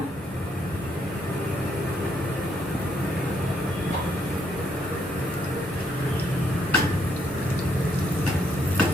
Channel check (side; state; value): both; normal; correlation 0.73